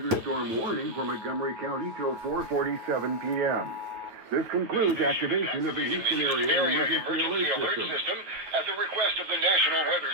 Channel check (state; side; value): late; left; 9.3 ms